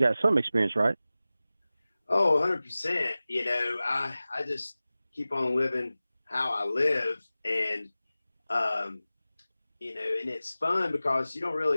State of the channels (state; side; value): inverted; both; correlation -0.96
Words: some experience, right? Oh, 100%. I just keep on living how I live, and and it's fun because you don't